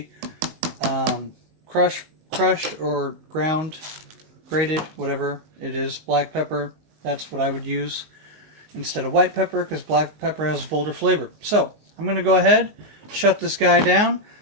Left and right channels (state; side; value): late; left; 19 ms